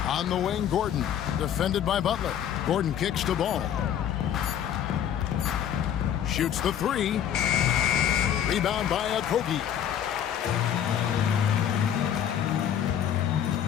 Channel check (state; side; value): quieter; right; 9.7 dB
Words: On the wing, Gordon. Defended by Butler. Gordon kicks to Ball. Shoots the 3. Rebound by Okogie.